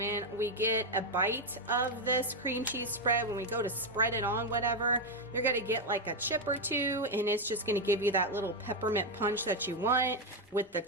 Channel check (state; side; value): normal; both; correlation 0.04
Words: we get a bite of this cream cheese spread, when we go to spread it on whatever, you're gonna get like a chip or two, and it's just gonna give you that little peppermint punch that you want with the